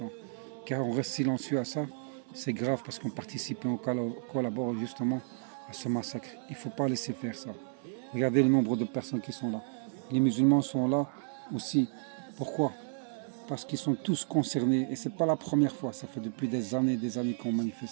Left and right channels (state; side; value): silent; left; 55 dB below the other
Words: Car on reste silencieux à ça. C'est grave parce qu'on participe et on collabore justement à ce massacre. Il ne faut pas laisser faire ça. Regardez le nombre de personnes qui sont là. Les musulmans sont là aussi. Pourquoi? Parce qu'ils sont tous concernés. Et ce n'est pas la première fois. Ça fait depuis des années qu'on